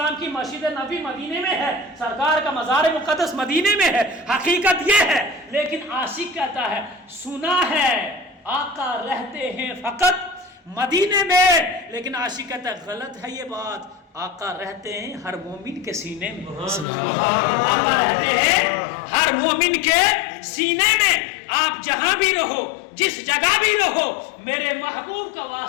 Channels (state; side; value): drops out; right; at 16.9 s